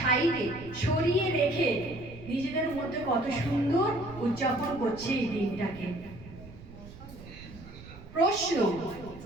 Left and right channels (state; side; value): noise; right; rumble, 17 dB below the sound